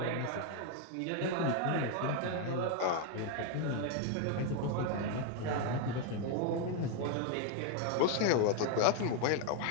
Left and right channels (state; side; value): different; both; correlation 0.01